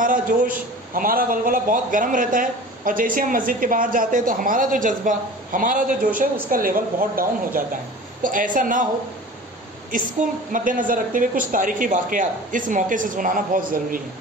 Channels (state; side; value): normal; both; correlation 0.39